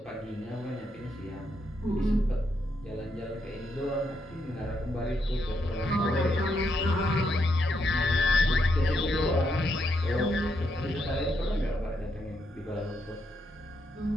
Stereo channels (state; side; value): normal; both; correlation 0.79